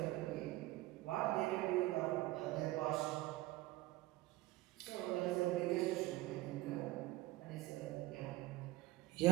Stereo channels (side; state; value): left; quieter; 18.3 dB